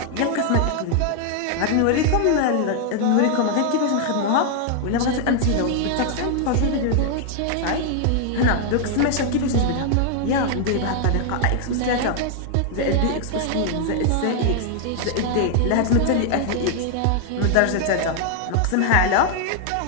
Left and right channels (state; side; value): different; both; correlation 0.00